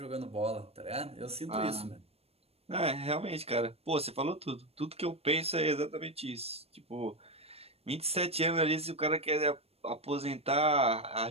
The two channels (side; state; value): left; late; 0.29 ms